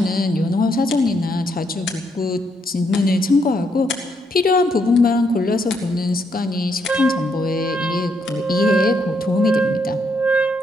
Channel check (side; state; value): both; normal; correlation 0.75